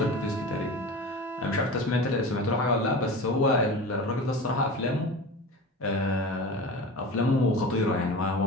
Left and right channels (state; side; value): normal; both; correlation 0.32